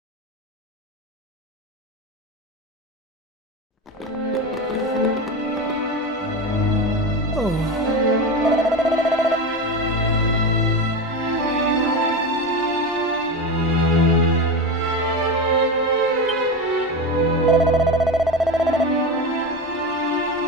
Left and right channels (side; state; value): both; normal; correlation 0.21